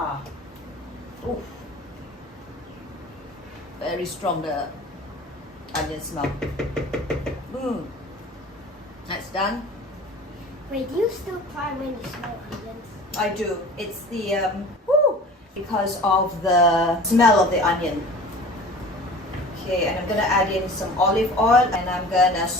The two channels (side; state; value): both; normal; correlation 0.41